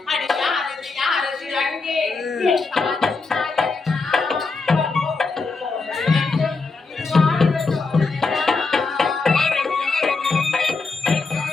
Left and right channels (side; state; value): right; quieter; 4.1 dB